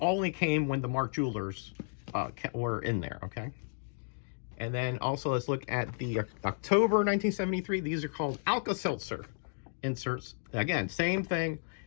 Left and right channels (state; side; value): silent; right; digital silence